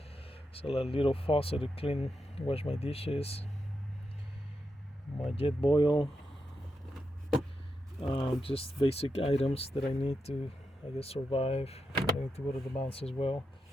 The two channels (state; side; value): normal; both; correlation 0.86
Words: So a little faucet to clean, wash my dishes. My jet boil. Just basic items that I need to, I guess, survive. I need to go to the mountains as well.